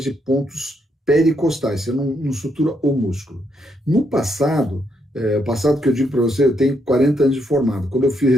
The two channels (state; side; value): normal; both; correlation 0.77